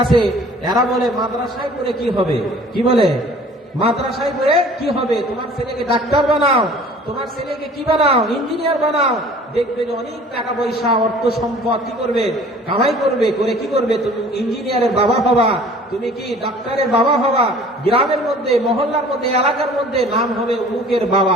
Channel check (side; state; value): both; normal; correlation 0.49